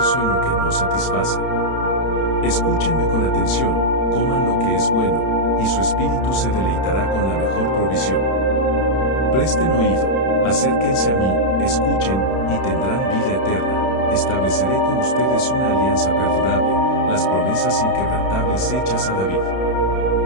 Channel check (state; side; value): late; right; 31 ms